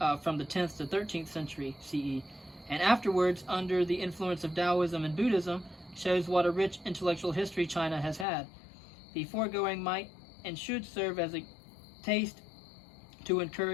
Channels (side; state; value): right; drops out; at 8.2 s